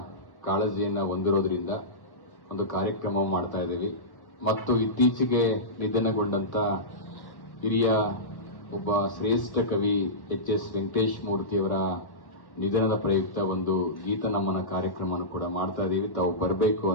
ಕಾಳಜಿಯನ್ನ ಹೊಂದಿರೋದ್ರಿಂದ ಒಂದು ಕಾರ್ಯಕ್ರಮ ಮಾಡ್ತಾ ಇದ್ದೀವಿ ಮತ್ತು ಇತ್ತೀಚೆಗೆ ನಿಧನಗೊಂಡಂತ ಹಿರಿಯ ಒಬ್ಬ ಶ್ರೇಷ್ಠ ಕವಿ ಎಚ್.ಎಸ್. ವೆಂಕಟೇಶ್ ಮೂರ್ತಿಯವರ ನಿಧನದ ಪ್ರಯುಕ್ತ ಒಂದು ಗೀತ ನಮನ ಕಾರ್ಯಕ್ರಮವನ್ನು ಕೂಡ ಮಾಡ್ತಾ ಇದ್ದೀವಿ. ತಾವು ಬರಬೇಕು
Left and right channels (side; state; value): right; late; 1.2 ms